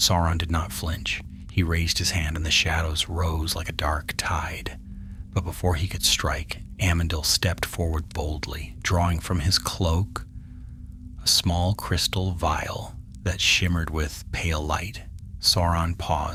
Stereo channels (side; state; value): both; identical; correlation 1.00